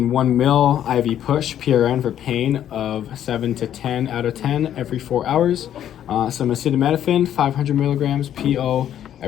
1 mil IV push PRN for pain of 7 to 10 out of 10 every 4 hours. Some acetaminophen, 500 milligrams PO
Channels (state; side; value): quieter; right; 10.6 dB